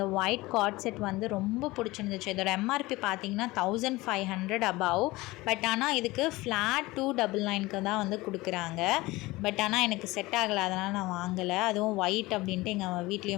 ஒயிட் கார்ட் செட் வந்து ரொம்ப பிடிச்சிருந்துச்சு. இதோட எம்ஆர்பி பார்த்தீங்கன்னா 1500 above. பட் ஆனால் இதுக்கு ஃப்ளாட் 299 தான் வந்து கொடுக்குறாங்க. பட் ஆனால் எனக்கு செட் ஆகலை, அதனால் நான் வாங்கலை. அதுவும் ஒயிட் அப்படின்ட்டு எங்கள்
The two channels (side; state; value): right; quieter; 20.4 dB